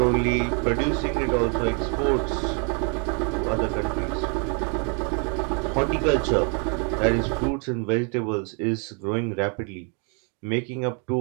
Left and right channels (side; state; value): left; quieter; 38.7 dB